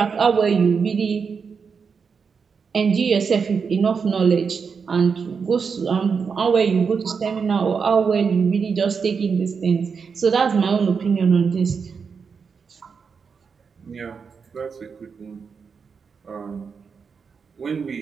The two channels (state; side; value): quieter; left; 5.8 dB